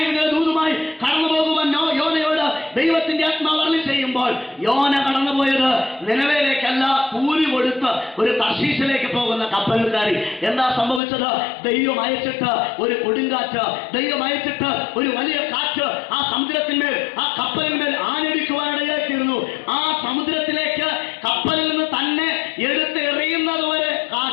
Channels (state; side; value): drops out; right; at 11.0 s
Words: ദൂതുമായി കടന്നു പോകുവാൻ യോനയോട് ദൈവത്തിന്റെ ആത്മാവ് അരുളി ചെയ്യുമ്പോൾ യോന കടന്നുപോയത് നിനവേലേക്കല്ല, കൂലി കൊടുത്ത് ഒരു തർശീശിലേക്ക് പോകുന്ന കപ്പലിൽ കയറി. എന്താ സംഭവിച്ചത്? ദൈവം അയച്ചിട്ട് ഒരു കൊടുങ്കാറ്റ്, ദൈവം അയച്ചിട്ട് ഒരു വലിയ കാറ്റ് ആ സമുദ്രത്തിന്മേൽ, ആ കപ്പലിന്മേൽ ആഞ്ഞടിക്കുവാനിടയായിത്തീർന്നു. ആ സമുദ്രത്തിലേക്ക് കപ്പലിൽ നിന്ന് തന്നെ എടുത്ത് എറിയുന്നത് വരെ